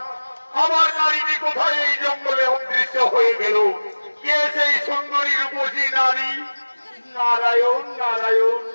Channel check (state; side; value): inverted; both; correlation -1.00